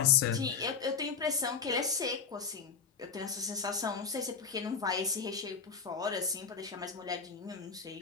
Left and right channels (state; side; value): quieter; right; 5.9 dB